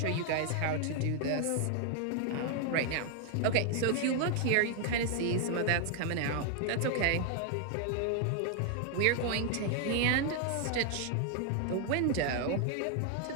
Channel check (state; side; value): different; both; correlation 0.00